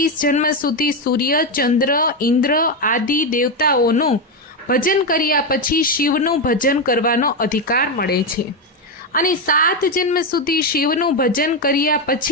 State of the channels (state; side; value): normal; both; correlation 0.09